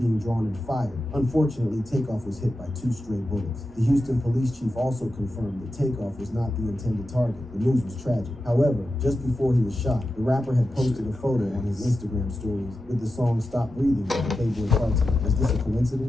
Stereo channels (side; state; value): both; normal; correlation 0.91